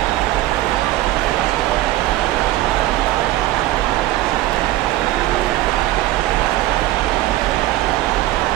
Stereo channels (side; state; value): left; quieter; 15.8 dB